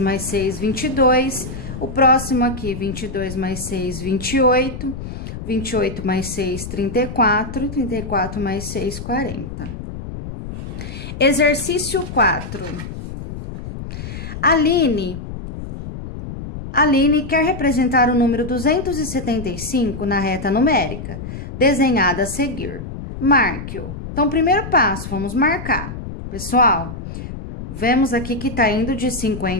6, 22. O próximo aqui, 22 mais 6, 28. 28 mais 6, 34. 34 mais 6, 40. Exercício 4. Aline quer representar o número 275 na reta numérica, desenhada a seguir. Marque-o. Então, primeiro passo, vamos marcar. Pessoal, vemos aqui que tá indo de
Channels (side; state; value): left; noise; rumble, 9 dB below the sound